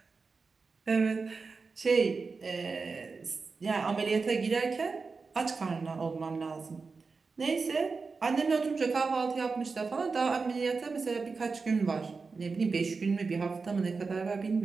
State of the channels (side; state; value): left; quieter; 4.5 dB